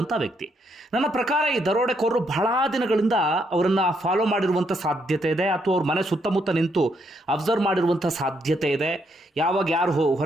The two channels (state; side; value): normal; both; correlation 0.75